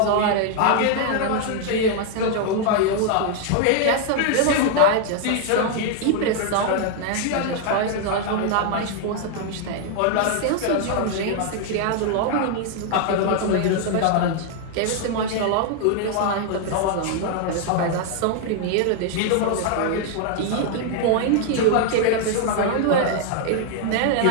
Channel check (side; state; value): both; different; correlation 0.00